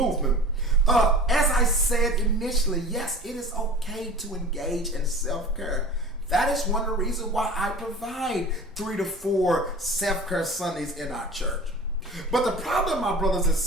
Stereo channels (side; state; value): both; normal; correlation 0.39